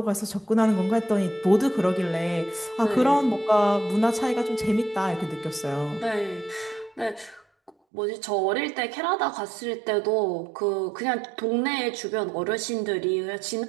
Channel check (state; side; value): drops out; left; at 7.7 s